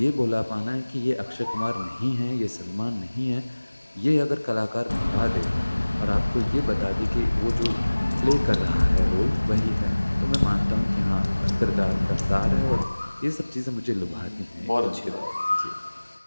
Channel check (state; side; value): inverted; both; correlation -1.00